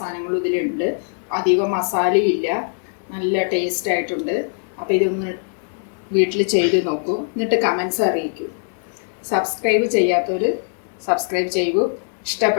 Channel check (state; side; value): silent; right; 61 dB below the other